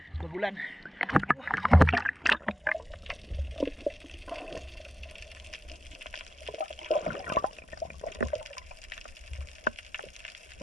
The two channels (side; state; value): both; normal; correlation 0.88